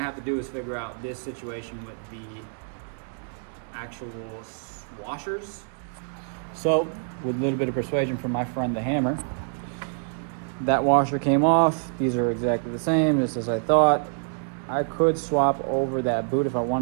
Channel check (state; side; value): silent; left; 60 dB below the other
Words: have to do is figure out this situation with the actual washers. So with a little bit of persuasion from my friend the hammer, that washer came off. These are exactly the same, just as I thought. I could swap over that boot if I